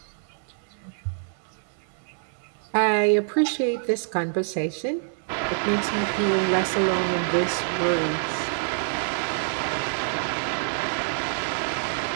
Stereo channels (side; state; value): left; silent; digital silence